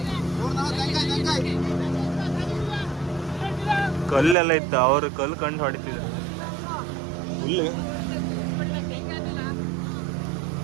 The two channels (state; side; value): drops out; left; at 4.4 s